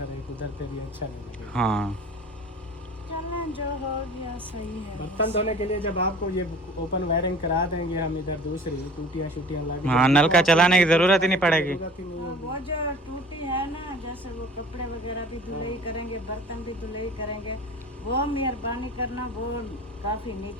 उधर पे भी अच्छा नहीं लगेगा। हाँ, चलना जो हो गया सही है। बर्तन धोने के लिए जब आपको ये ओपन वायरिंग करा देंगे हम, इधर दूसरी टूटियाँ शूटियाँ लग हाँ, नलका चलाने की जरूरत ही नहीं पड़ेगी। जरूरत ही नहीं होगी। वो जो टूटी है ना, जैसे वो कपड़े वगैरह भी धुलाई करेंगे, बर्तन भी धुलाई करेंगे, वो मेहरबानी करना वो काफी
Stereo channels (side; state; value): both; normal; correlation 0.44